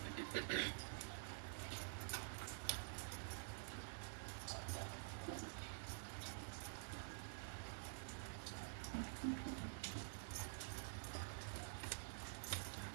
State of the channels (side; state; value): left; silent; digital silence